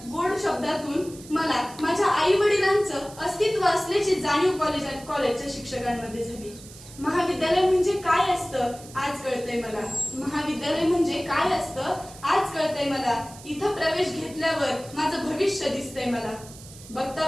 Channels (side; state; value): right; noise; hiss, 18 dB below the sound